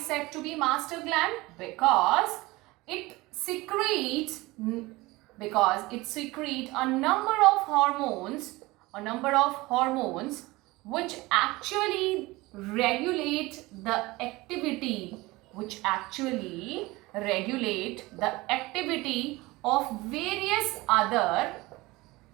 said to be master gland? Because it secretes a number of hormones which actually regulate the activity of various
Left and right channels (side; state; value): left; quieter; 21.2 dB